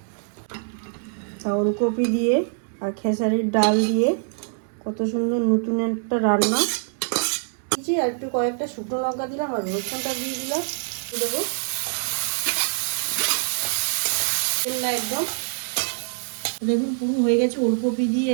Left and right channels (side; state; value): left; silent; digital silence